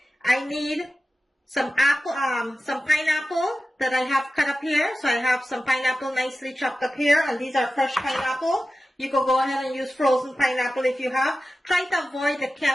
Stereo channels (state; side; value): normal; both; correlation 0.94